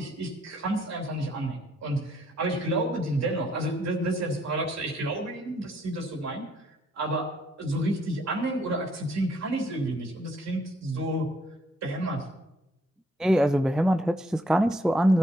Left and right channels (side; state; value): both; normal; correlation 0.69